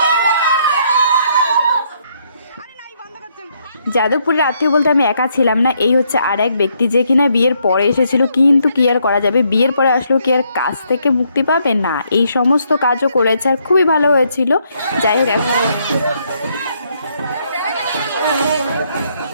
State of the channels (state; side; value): inverted; both; correlation -0.72